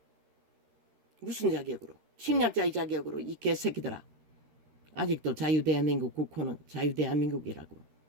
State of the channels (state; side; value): late; left; 13 ms